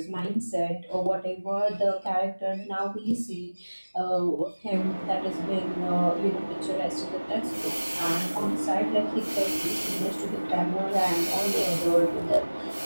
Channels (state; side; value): inverted; both; correlation -1.00